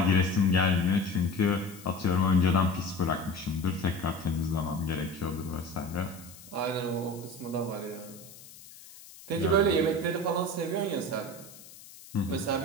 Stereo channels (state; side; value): noise; left; hiss, 19 dB below the sound